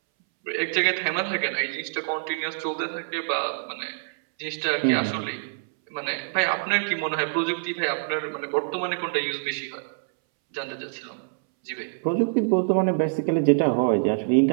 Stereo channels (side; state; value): left; silent; 61 dB below the other